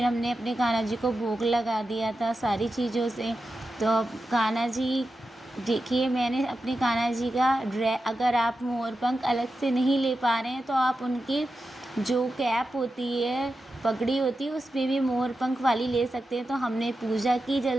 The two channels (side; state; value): both; normal; correlation 0.91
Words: हमने अपने कान्हा जी को भोग लगा दिया था सारी चीज़ों से। तो अब कान्हा जी देखिए मैंने अपने कान्हा जी का अगर आप मोरपंख अलग से नहीं ले पा रहे हैं तो आप उनकी जो कैप होती है, पगड़ी होती है, उसमें भी मोरपंख वाली ले सकते हैं। तो हमने पूजा की